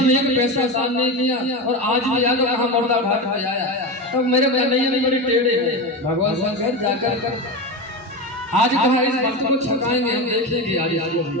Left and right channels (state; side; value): normal; both; correlation 0.20